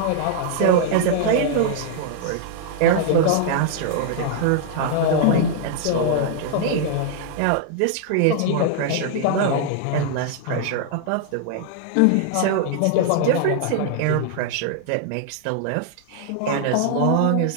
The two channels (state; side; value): different; both; correlation -0.01